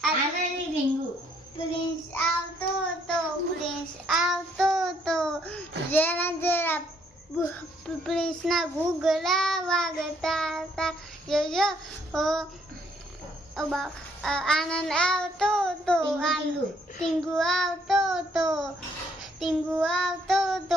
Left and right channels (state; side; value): normal; both; correlation 0.68